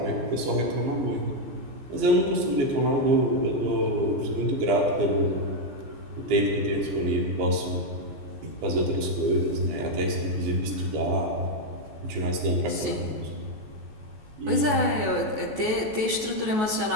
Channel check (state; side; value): late; left; 14 ms